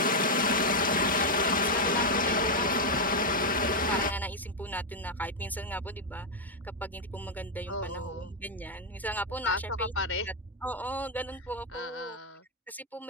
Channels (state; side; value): normal; both; correlation 0.02